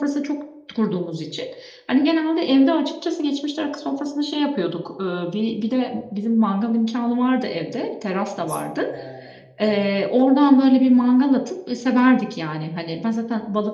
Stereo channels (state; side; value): identical; both; correlation 1.00